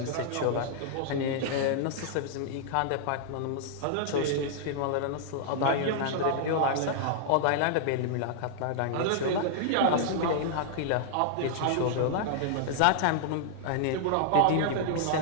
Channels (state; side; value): different; both; correlation -0.01